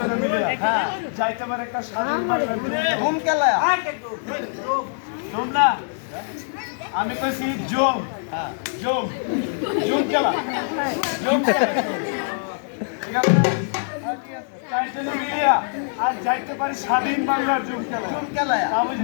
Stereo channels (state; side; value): silent; right; digital silence